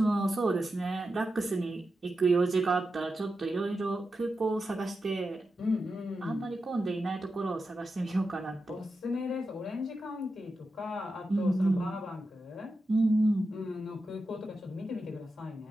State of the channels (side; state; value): both; normal; correlation 0.90